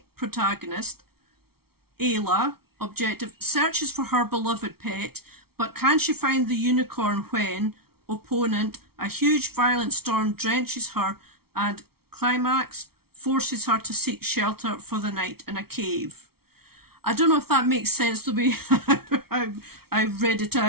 protagonist. Ayla, objective, searches for her beloved pet, but can she find the unicorn when, opponent, a huge violent storm drenches her, and climax, forces her to seek shelter for the night in a cave. I don't know if that makes sense the way I read it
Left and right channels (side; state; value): left; late; 0.95 ms